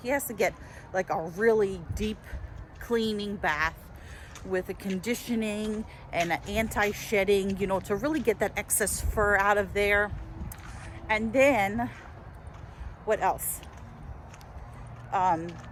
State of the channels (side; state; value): both; identical; correlation 1.00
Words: He has to get like a really deep cleaning bath with a conditioning and an anti-shedding, you know, to really get that excess fur out of there. And then what else?